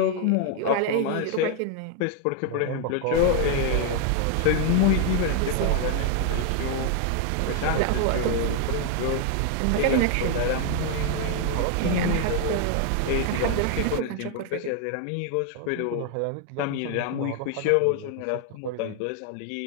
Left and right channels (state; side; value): different; both; correlation 0.00